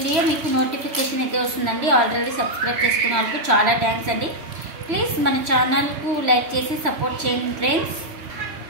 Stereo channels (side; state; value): left; late; 3.1 ms